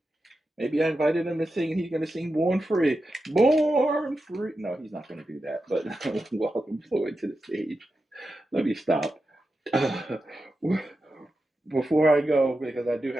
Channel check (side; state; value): both; normal; correlation 0.90